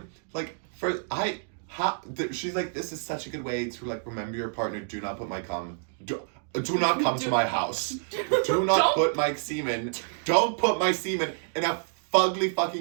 like she's like, this is such a good way to like remember your partner. Do not put my cum. Do not come to my house. Do not put my semen. Don't put my semen in a fugly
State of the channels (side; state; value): left; silent; digital silence